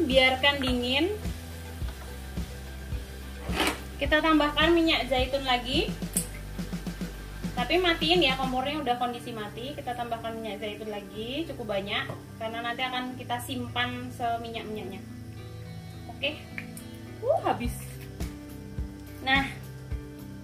biarkan dingin. Kita tambahkan minyak zaitun lagi. Tapi matiin ya, kompornya udah kondisi mati. Kita tambahkan minyak zaitun lagi, cukup banyak karena nanti akan kita simpan seminyak-minyaknya. Oke. Habis. Nah,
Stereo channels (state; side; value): identical; both; correlation 1.00